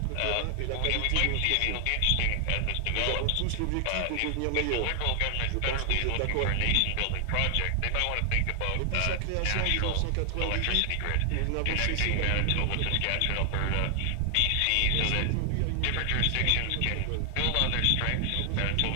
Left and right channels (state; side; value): different; both; correlation 0.00